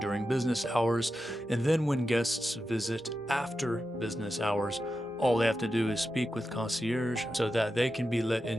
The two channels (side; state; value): both; normal; correlation 0.90